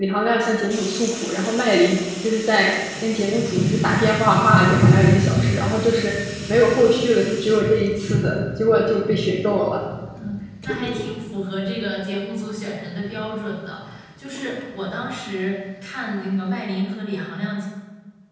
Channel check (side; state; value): both; identical; correlation 1.00